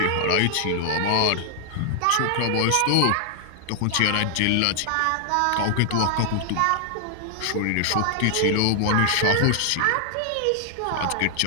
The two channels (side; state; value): both; different; correlation 0.00